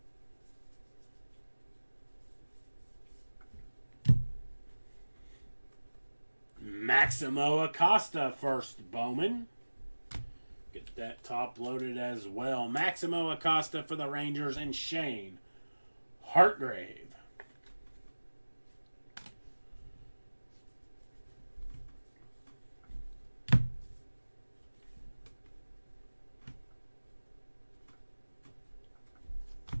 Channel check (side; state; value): both; inverted; correlation -1.00